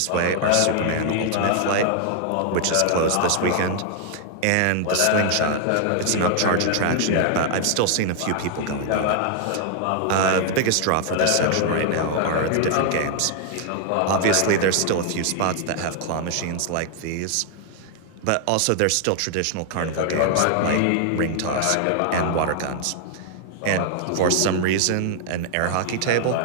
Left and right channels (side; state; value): both; different; correlation 0.00